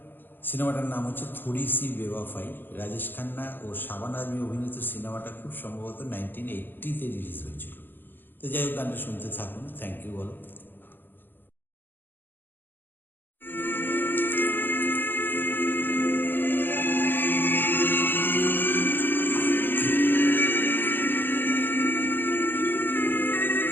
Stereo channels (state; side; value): late; right; 0.096 ms